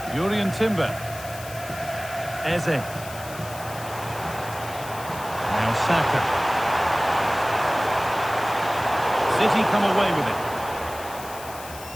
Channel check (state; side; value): noise; left; hiss, 15 dB below the sound